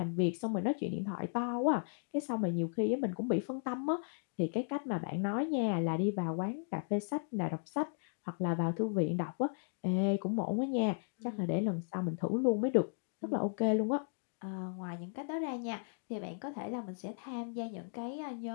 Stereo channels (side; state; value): right; silent; digital silence